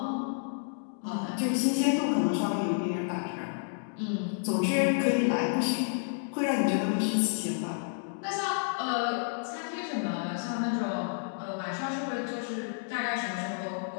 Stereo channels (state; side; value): silent; right; digital silence